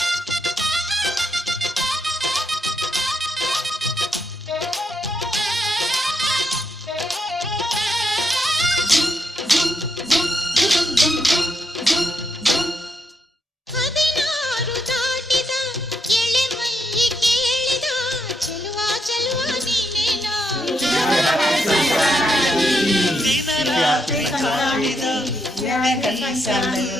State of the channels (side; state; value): both; normal; correlation 0.80